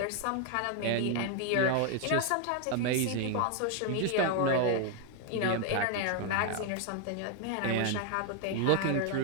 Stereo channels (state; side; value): different; both; correlation 0.00